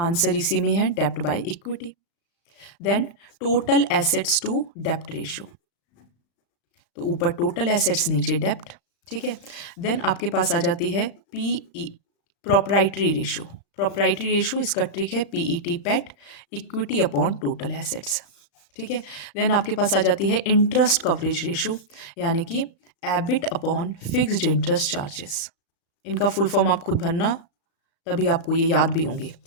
इसी में है, डेप्ट by equity. Then total assets to डेप्ट रेशो, तो ऊपर टोटल एसेट्स नीचे डेप्ट। ठीक है, देन आपके पास आ जाती है P E, proprietary ratio. Proprietary ratio, इसका ट्रिक है पीईटी, पेट, इक्विटी अपॉन टोटल एसेट्स। ठीक है, देन आपके पास आ जाती है इंटरेस्ट कवरेज रेशो, यानी कि EBIT upon fixed interest charges. इनका फुल फॉर्म आप खुद भरना, तभी आपको ये याद भी होंगे।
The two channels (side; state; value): right; late; 35 ms